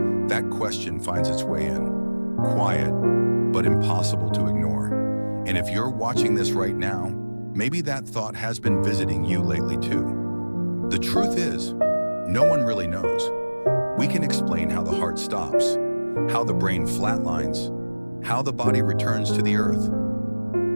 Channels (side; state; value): both; inverted; correlation -1.00